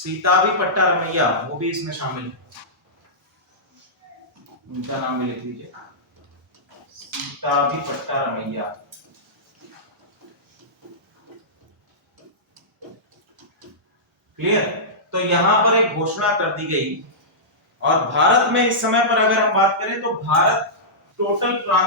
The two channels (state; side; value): normal; both; correlation -0.15